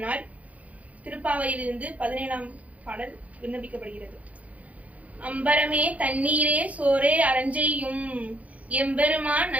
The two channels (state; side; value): late; left; 0.068 ms